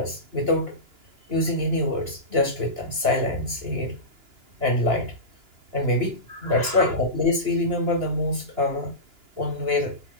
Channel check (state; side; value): late; left; 2.9 ms